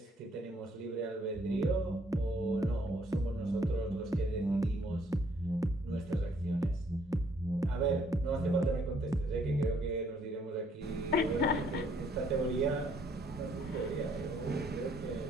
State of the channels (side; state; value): both; normal; correlation 0.66